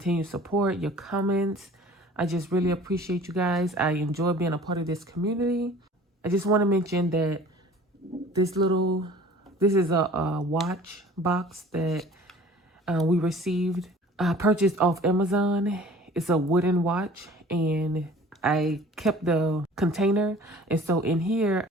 support, your comments. I just really appreciate you guys. I enjoy being a part of this community. I just want to mention that this is a watch box that we received, purchased off Amazon. It's a wooden watch, and I kept the container. And so in here,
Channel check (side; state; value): both; normal; correlation 0.47